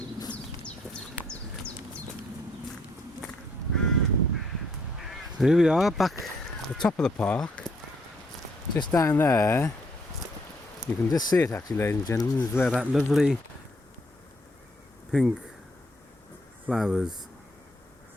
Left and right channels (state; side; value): normal; both; correlation 0.70